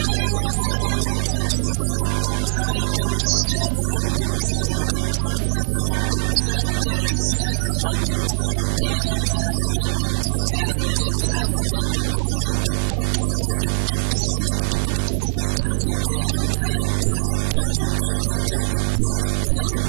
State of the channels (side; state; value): left; silent; digital silence